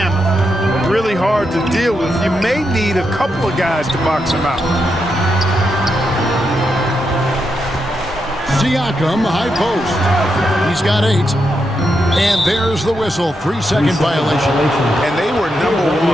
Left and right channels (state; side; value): normal; both; correlation 0.84